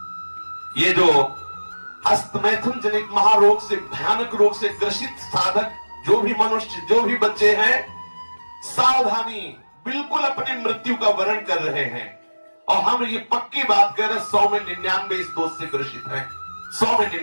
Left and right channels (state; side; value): inverted; both; correlation -1.00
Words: ये जो हस्तमैथुन जनित महारोग से, भयानक रोग से ग्रसित साधक जो भी मनुष्य, जो भी बच्चे हैं, सावधानी, बिल्कुल अपनी मृत्यु का वर्ण कर रहे हैं। और हम ये पक्की बात कर रहे हैं, 100 में 99 इस दोष से ग्रसित हैं। 100 में